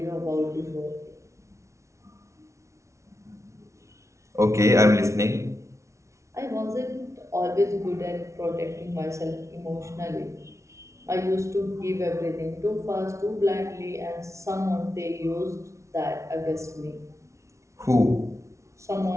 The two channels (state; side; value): late; left; 0.14 ms